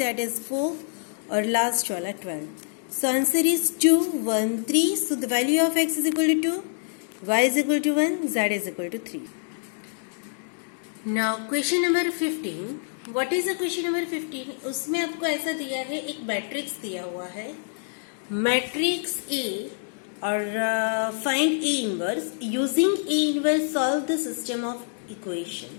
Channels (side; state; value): right; silent; digital silence